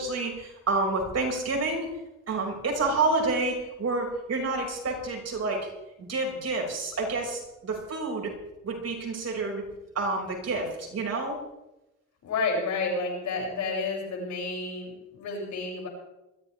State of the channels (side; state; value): both; normal; correlation -0.05